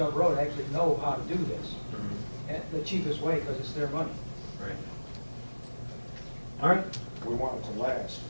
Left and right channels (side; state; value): both; inverted; correlation -1.00